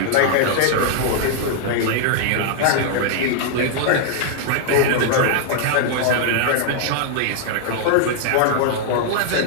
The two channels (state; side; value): different; both; correlation 0.00